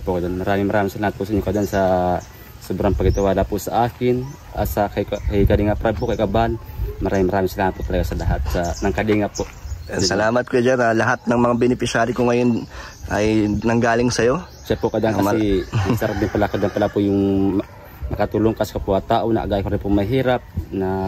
Kadan. Maraming salamat po sa inyo, Kadan, sa sobrang pagtitiwala po sa akin, sa kay Kalinga Prab po, kay Kaban. Maraming salamat po talaga sa lahat ng Kalinga po. Salamat Kuya Jer. Lahat ng mga beneficiary ko ngayon ay nanggaling sa'yo. Siya po kadang kasi sarap din pala po yung makatulong kasi kapwa tao na agay ko rin po mahirap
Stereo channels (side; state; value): both; identical; correlation 1.00